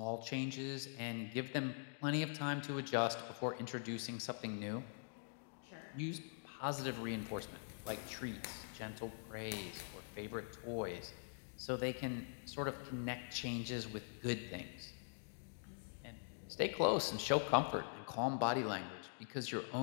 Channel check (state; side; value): silent; right; digital silence